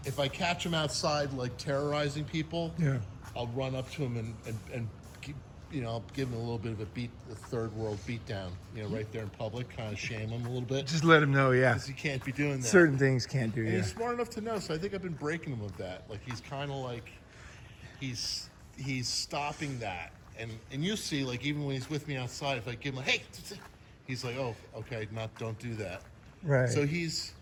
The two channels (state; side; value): identical; both; correlation 1.00